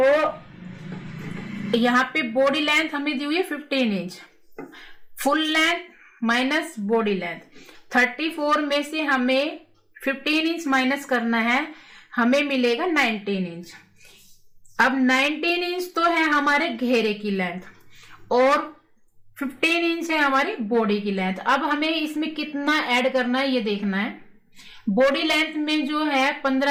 यहाँ पे बॉडी लेंथ हमें दी हुई है 15 inch. Full length minus body length, 34 में से हमें 15 इंच माइनस करना है, हमें मिलेगा 19 इंच। अब 19 इंच तो है हमारे घेरे की लेंथ और 15 इंच है हमारी बॉडी की लेंथ। अब हमें इसमें कितना ऐड करना है ये देखना है। बॉडी लेंथ में जो है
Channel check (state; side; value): identical; both; correlation 1.00